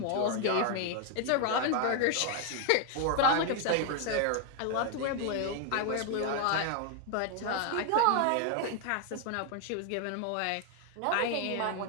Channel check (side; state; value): both; different; correlation 0.00